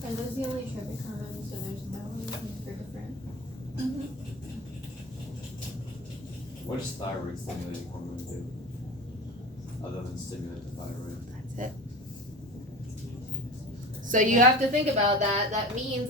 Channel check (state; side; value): normal; both; correlation 0.33